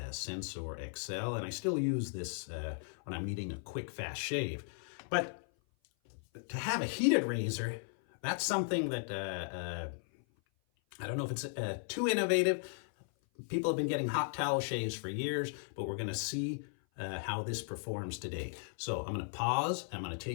Sensor XL, and I still use this when I'm needing a quick, fast shave. But to have a heated razor, that's something that I don't know if it's too innovative. People have been getting hot towel shaves for years, but we're going to see how this performs today. So I'm going to pause. I'm going to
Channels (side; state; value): right; silent; 54 dB below the other